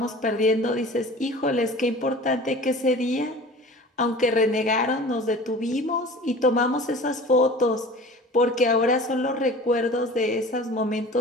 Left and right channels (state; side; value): normal; both; correlation 0.41